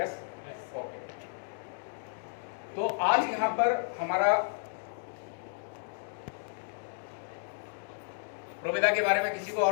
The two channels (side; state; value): right; silent; digital silence